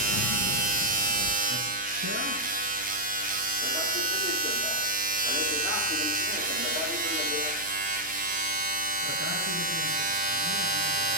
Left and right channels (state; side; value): noise; left; hum, 20 dB below the sound